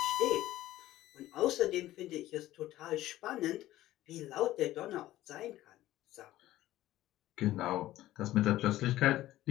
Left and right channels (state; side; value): quieter; right; 15.1 dB